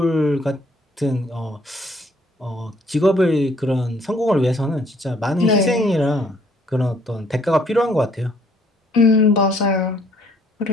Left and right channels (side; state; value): both; normal; correlation 0.63